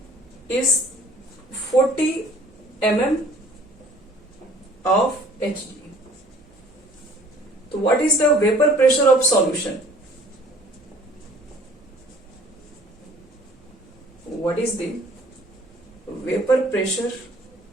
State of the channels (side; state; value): both; normal; correlation 0.53